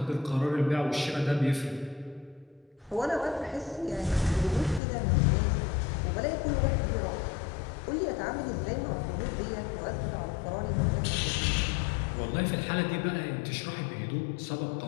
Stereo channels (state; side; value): drops out; right; at 4.8 s